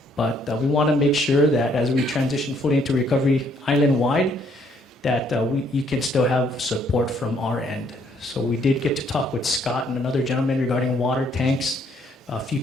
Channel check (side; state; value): both; normal; correlation 0.67